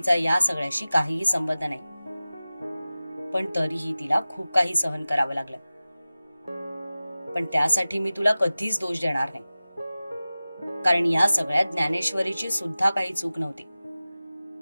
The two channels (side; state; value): both; inverted; correlation -0.97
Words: या सगळ्याशी काहीही संबंध नाही, पण तरीही तिला खूप काही सहन करावं लागलं. पण त्यासाठी मी तुला कधीच दोष देणार नाही, कारण या सगळ्यात ज्ञानेश्वरीची सुद्धा काही चूक नव्हती.